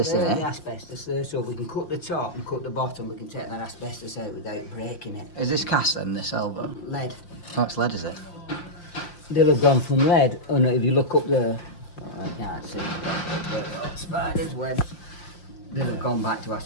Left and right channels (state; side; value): late; right; 5.7 ms